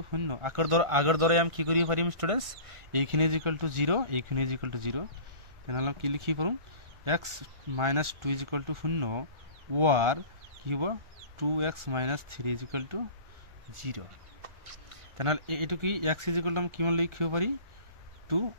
0 আগৰ দৰে আমি কি কৰিব পাৰিম ষ্টুডেন্টস এইখিনি ইজ ইকুয়াল টু 0 এইখিনি ইজ ইকুয়াল টু 0 তেনেহলে কি লিখি পাৰোঁ x - 2 is equal to 0 or কি হ'ব 2x - 3 ইজ ইকুয়াল টু 0 তেনেহলে এইটো কি x ইজ ইকুয়াল টু আমি কিমান লিখিব পাৰি 2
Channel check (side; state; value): left; late; 1.4 ms